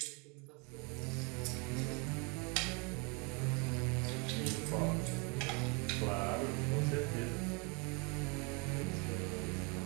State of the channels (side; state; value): left; quieter; 31.7 dB